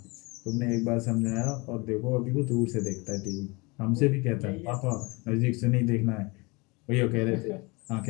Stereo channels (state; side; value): quieter; right; 26.5 dB